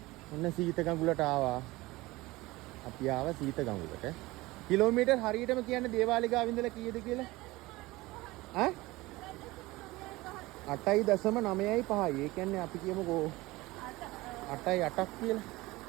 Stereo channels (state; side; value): quieter; left; 20.2 dB